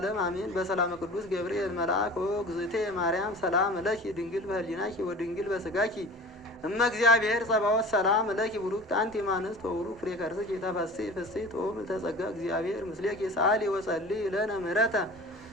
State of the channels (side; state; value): both; normal; correlation 0.39